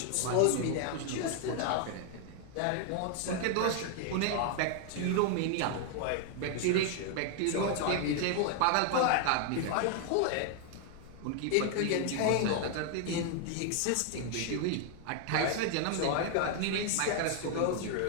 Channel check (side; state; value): both; different; correlation 0.00